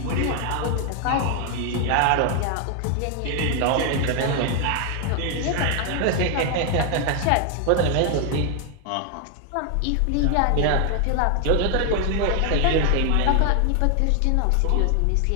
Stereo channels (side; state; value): both; different; correlation 0.00